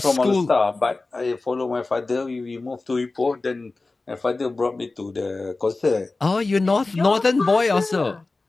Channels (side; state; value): right; quieter; 3.4 dB